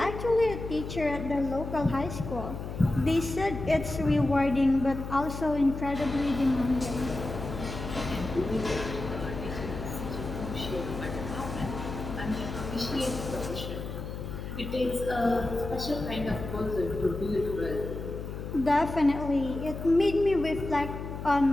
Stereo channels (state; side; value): noise; left; hum, 7 dB below the sound